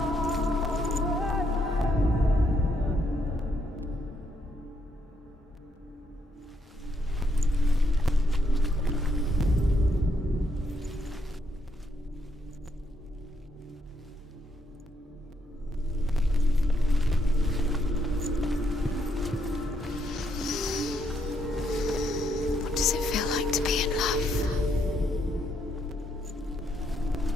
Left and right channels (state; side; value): normal; both; correlation 0.75